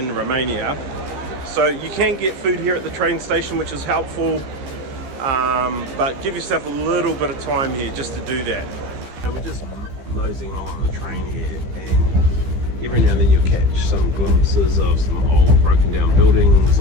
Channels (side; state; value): left; late; 15 ms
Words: Romania. So you can get food here at the train station, which is helpful, but give yourself a little bit of time here just to do that. So we're just moseying on the train here, and every now and then you'll catch some glimpses of some old broken down buildings,